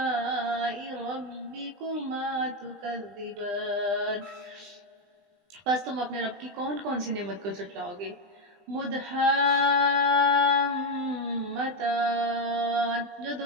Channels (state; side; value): late; left; 20 ms